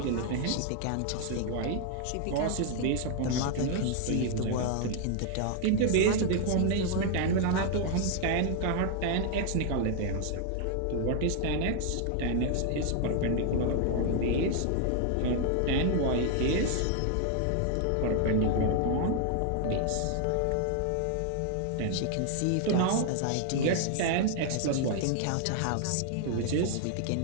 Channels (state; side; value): different; both; correlation 0.00